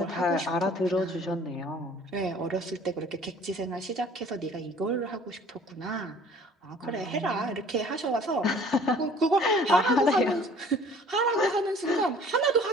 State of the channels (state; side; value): normal; both; correlation 0.51